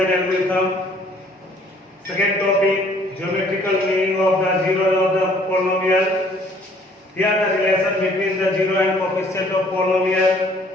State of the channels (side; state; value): both; normal; correlation 0.59